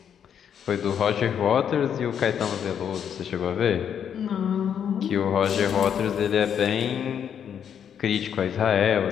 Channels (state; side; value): quieter; right; 8.4 dB